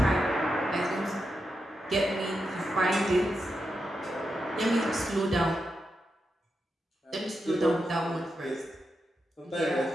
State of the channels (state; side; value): normal; both; correlation 0.87